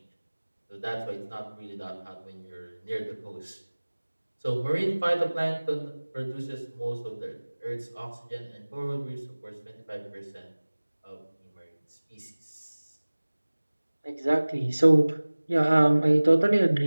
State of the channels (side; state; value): both; inverted; correlation -1.00